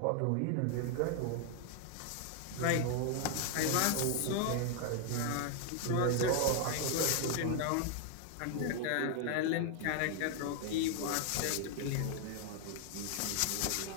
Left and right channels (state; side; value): different; both; correlation 0.00